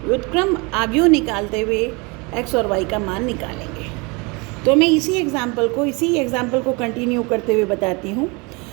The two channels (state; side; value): quieter; left; 28.2 dB